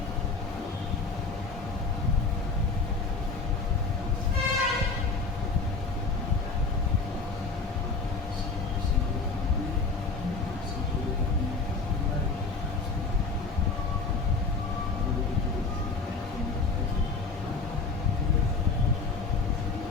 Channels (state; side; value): quieter; right; 4.2 dB